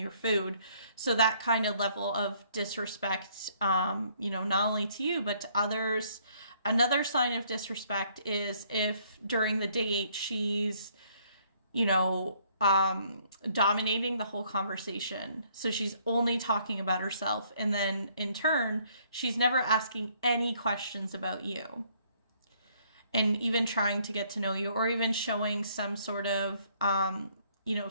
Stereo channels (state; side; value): inverted; both; correlation -0.65